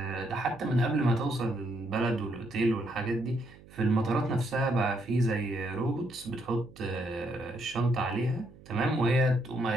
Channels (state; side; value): noise; right; hum, 22 dB below the sound